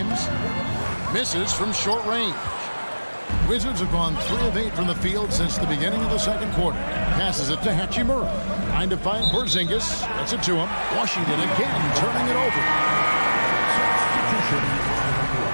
Misses from short range. Wizards have gone 3 of 8 from the field since the beginning of the second quarter. Passes it to Hachimura. Trying to find Porzingis. Gets it to him. Washington again turning it over.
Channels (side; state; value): both; inverted; correlation -1.00